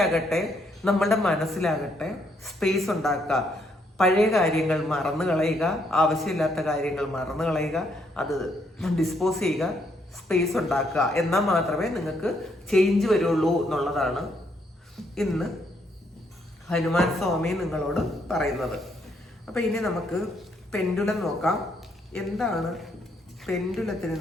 നമ്മളുടെ മനസ്സിലാകട്ടെ സ്പേസ് ഉണ്ടാക്കുക. പഴയ കാര്യങ്ങൾ മറന്നു കളയുക, ആവശ്യമില്ലാത്ത കാര്യങ്ങൾ മറന്നു കളയുക, അത് ഡിസ്പോസ് ചെയ്യുക, സ്പേസ് ഉണ്ടാക്കുക. എന്നാൽ മാത്രമേ നിങ്ങൾക്ക് ചേഞ്ച് വരുള്ളൂ എന്നുള്ളതാണ് ഇന്ന് ഹനുമാൻ സ്വാമി നിങ്ങളോട് പറയുന്നത്. അപ്പൊ ഇനി നമുക്ക് പെൻഡുലം നോക്കാം. എന്താണ് പെൻഡുലത്തിൽ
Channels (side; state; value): both; normal; correlation 0.73